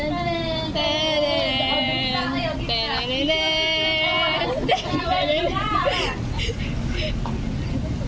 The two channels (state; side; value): identical; both; correlation 1.00